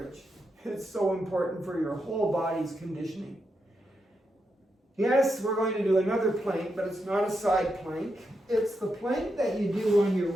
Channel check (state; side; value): normal; both; correlation 0.84